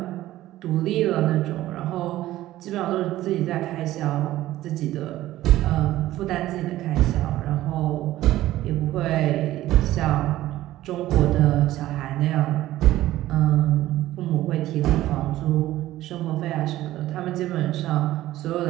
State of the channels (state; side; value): quieter; left; 15.1 dB